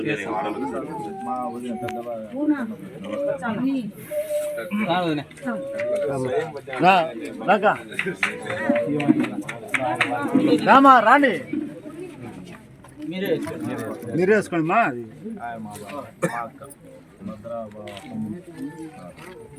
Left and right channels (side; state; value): both; identical; correlation 1.00